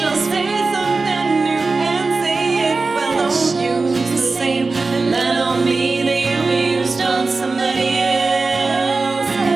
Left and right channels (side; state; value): left; quieter; 3.9 dB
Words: Say something new and say it well. Don't use the same line on me that you used on somebody else.